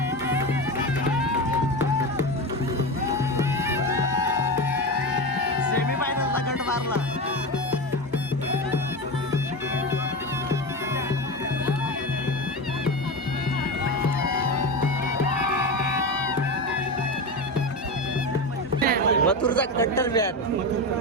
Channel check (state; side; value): normal; both; correlation 0.21